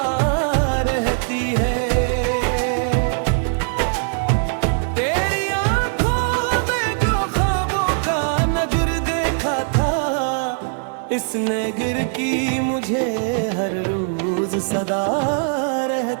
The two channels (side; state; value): left; silent; 65 dB below the other